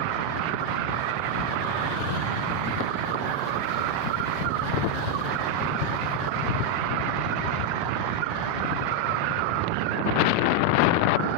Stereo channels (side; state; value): left; late; 7.4 ms